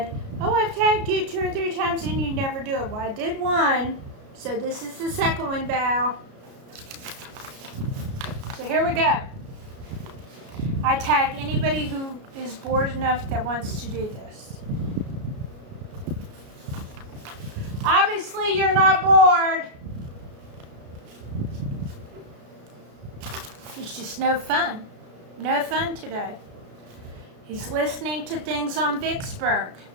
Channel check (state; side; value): late; left; 34 ms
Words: "Oh, I've tagged you 2 or 3 times and you never do it." Well, I did one, so this is the second one, Val. So here we go. I tag anybody who is bored enough that wants to do this. Obviously, you're not bored. It's just no fun. No fun today. He's listening to things on Vicksburg.